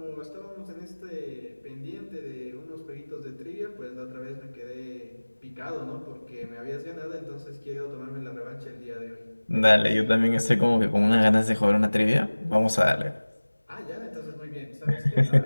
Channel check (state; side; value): inverted; both; correlation -1.00